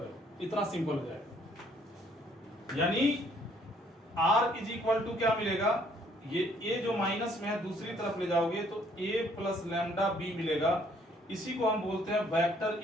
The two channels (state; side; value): normal; both; correlation 0.64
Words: हो, इतना सिंपल हो जाएगा। यानी r इज इक्वल टू क्या मिलेगा? ये a जो माइनस में है दूसरी तरफ ले जाओगे तो a प्लस लैम्डा b मिलेगा। इसी को हम बोलते हैं vector